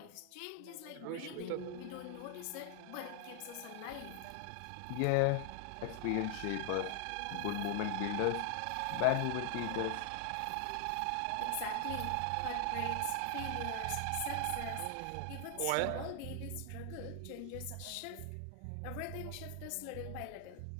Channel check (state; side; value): different; both; correlation 0.00